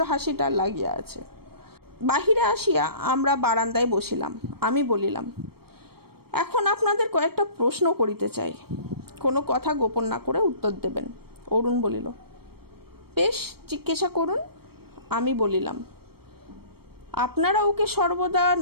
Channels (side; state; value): left; late; 0.95 ms